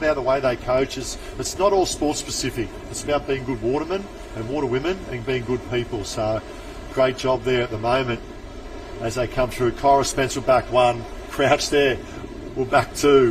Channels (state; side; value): identical; both; correlation 1.00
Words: the way they coach is it's not all sports specific. It's about being good watermen and waterwomen and being good people. So great job there at the moment as they come through. Kyra Spencer back 1, Crouch there, we're back